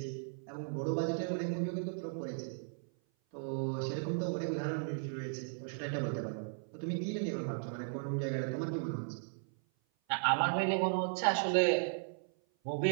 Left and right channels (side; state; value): left; silent; 54 dB below the other